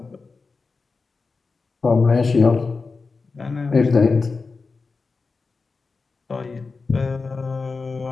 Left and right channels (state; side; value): quieter; right; 4.3 dB